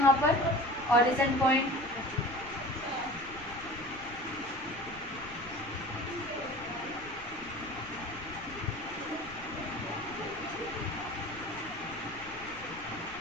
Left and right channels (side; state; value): left; noise; rumble, 18 dB below the sound